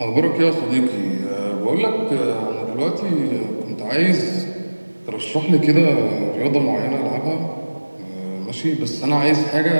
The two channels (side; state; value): both; inverted; correlation -1.00